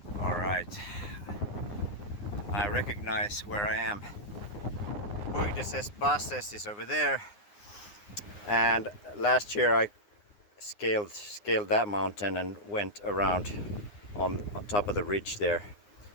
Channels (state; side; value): late; right; 9.7 ms